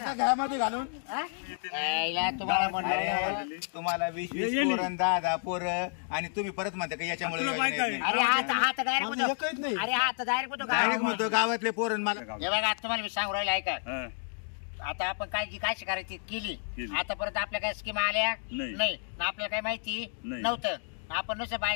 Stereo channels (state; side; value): silent; right; digital silence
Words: घरामध्ये घालून हा? यायला तुम्हाला म्हणलं अरे, तुम्हाला 20-20 ये- ये पोरं 10-10 पोरं आणि तुम्ही परत म्हणता का याच्यामुळे तुला योजना बायका येत आहे. नाही. अरे हात डायरेक्ट माझं होतो एकच नाही. अरे हात डायरेक्ट होतो डायरेक्ट का म्हणतो गावातले पोरं मला हे बघा तुम्हाला मी सांगू राहिलो ऐका हा. आता आपण काय जी काय करायची केली केली. आतापर्यंत आपल्या काय स्कीम आल्या नाही. नाही ना आपल्याला काही माहिती नाही. नव्हतं आपण नुसतं